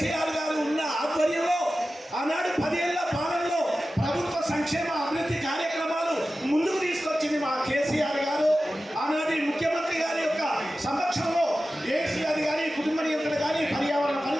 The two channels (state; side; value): normal; both; correlation 0.94